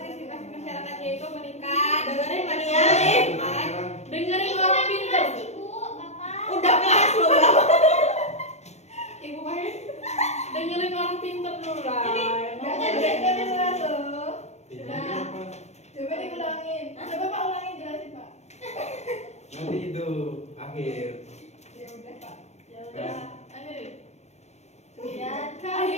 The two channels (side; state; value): right; late; 0.32 ms